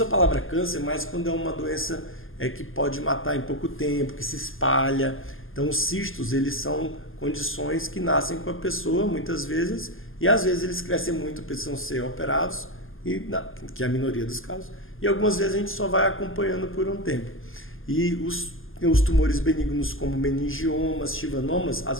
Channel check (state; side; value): late; right; 0.59 ms